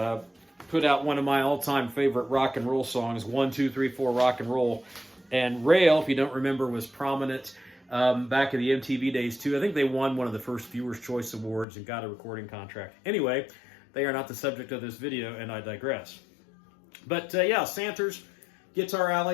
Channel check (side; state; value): right; drops out; at 11.7 s